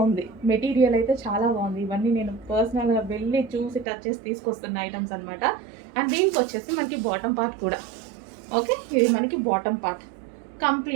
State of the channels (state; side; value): drops out; left; at 3.9 s